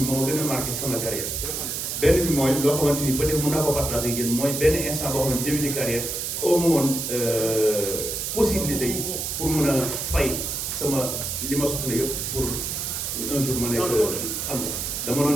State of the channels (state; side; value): noise; right; hiss, 3 dB below the sound